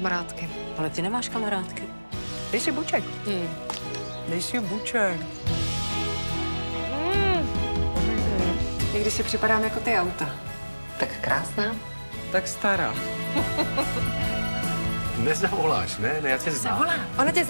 Ale ty nemáš kamarádky. Dej si buček. Dej si buček. Někdy si připadám jako ty auta. Tak krásná. Tak stará. Nezavoláš, ne? Já tě znám. Ona tě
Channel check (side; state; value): both; inverted; correlation -1.00